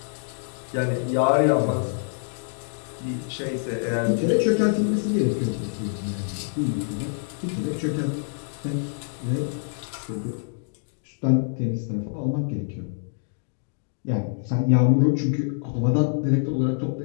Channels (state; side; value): silent; right; digital silence